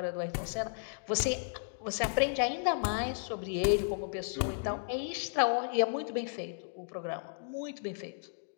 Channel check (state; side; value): silent; right; digital silence